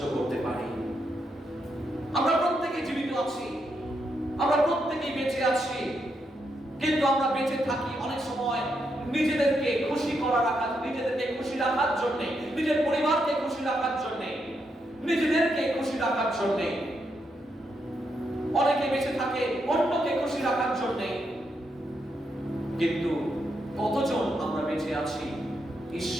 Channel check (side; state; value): both; normal; correlation 0.81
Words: করতে পারি। আমরা প্রত্যেকে জীবিত আছি, আমরা প্রত্যেকেই বেঁচে আছি, কিন্তু আমরা বেঁচে থাকি অনেক সময় নিজেদেরকে খুশি নিজেদেরকে খুশি রাখার জন্য, নিজের পরিবারকে খুশি রাখার জন্য, নিজেদেরকে খুশি রাখার জন্য। অনেকে বেঁচে থাকে অন্যকে খুশি রাখার জন্য, কিন্তু কতজন আমরা বেঁচে আছি